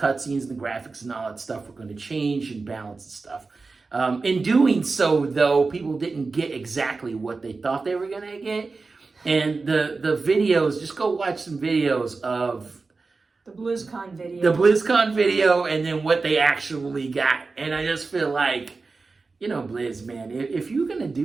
and the graphics and all that stuff were going to change and balance and stuff. In doing so, though, people didn't get exactly what they thought they were going to get. And the videos, just go watch some videos of the BlizzCon video. The BlizzCon video and then what they actually got. And I just feel like, Blizz, man, if you're going to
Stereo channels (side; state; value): left; quieter; 4.1 dB